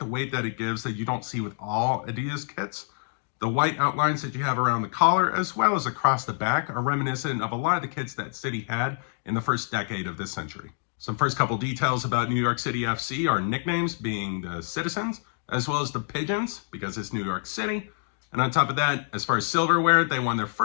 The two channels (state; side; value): silent; right; 58 dB below the other